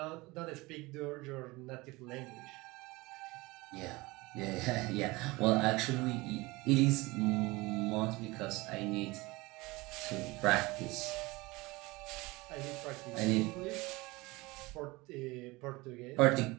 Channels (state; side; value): quieter; left; 22.5 dB